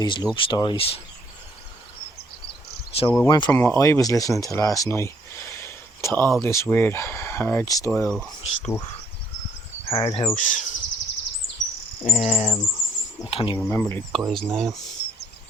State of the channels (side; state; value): both; normal; correlation 0.66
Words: love stories. So it went from what I was listening to last night to all this weird hard style stuff, hard house. I can't even remember the guy's name.